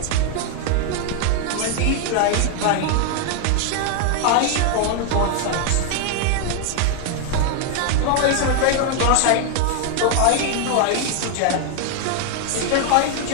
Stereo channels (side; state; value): both; different; correlation 0.00